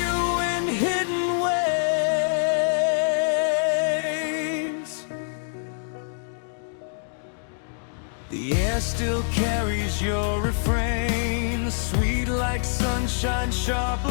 you in hidden ways. The air still carries your refrain, sweet like sunshine, sharp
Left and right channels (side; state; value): right; silent; digital silence